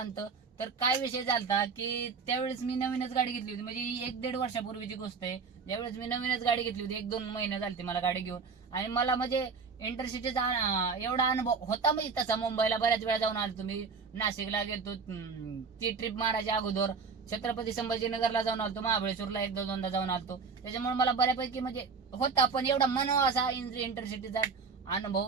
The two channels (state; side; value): quieter; left; 5.2 dB